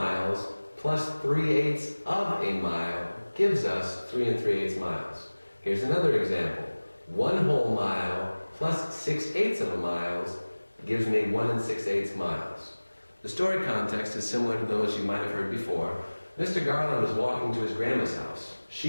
plus 3/8 of a mile gives us 3 3/8 miles. Here's another example. 1 whole mile plus 6/8 of a mile gives me 1 6/8 miles. The story context is similar to those you might have heard before. Mr. Garland was walking to his grandma's house.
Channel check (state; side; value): inverted; both; correlation -1.00